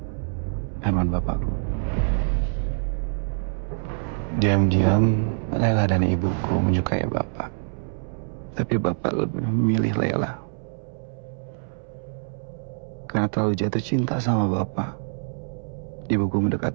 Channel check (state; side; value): silent; left; 62 dB below the other